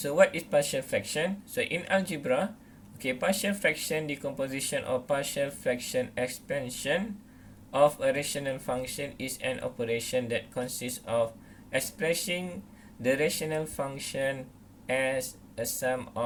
what is partial fraction? So in algebra, partial fraction decomposition or partial fraction expansion of a rational function is an operation that consists of expressing the rational function as a sum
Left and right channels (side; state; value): both; identical; correlation 1.00